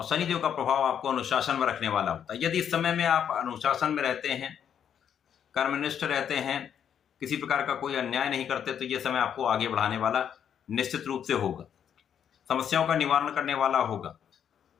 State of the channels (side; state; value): right; quieter; 8.6 dB